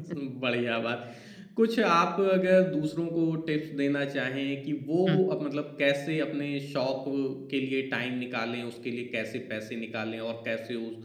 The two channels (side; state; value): both; identical; correlation 1.00